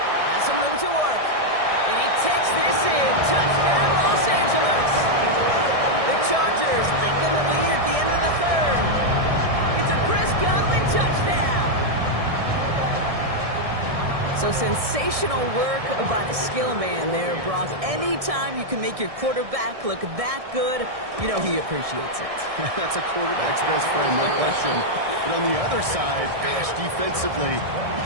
Has some room to work. And he takes this in. Touchdown, Los Angeles. The Chargers lengthen the lead at the end of the 3rd. It's a Chris Godwin touchdown. So sensational work by the skill man there, Brock. Anytime you can make your quarterback look that good, you know he appreciates it. That's a quarterback's best friend, no question. But on the other side, gosh, defensively, you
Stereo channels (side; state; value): left; late; 1.6 ms